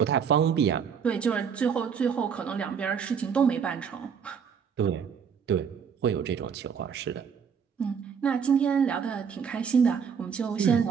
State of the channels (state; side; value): quieter; left; 6.9 dB